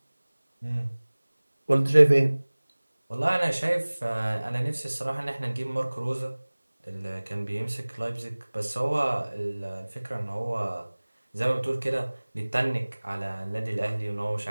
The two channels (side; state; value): both; inverted; correlation -1.00